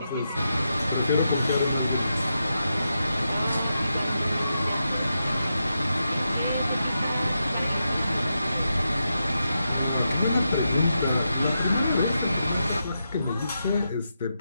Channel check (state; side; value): inverted; both; correlation -0.87